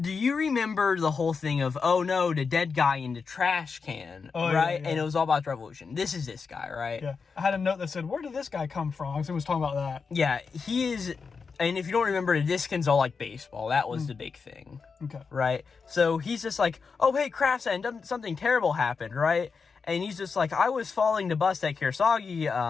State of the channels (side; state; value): right; quieter; 5.2 dB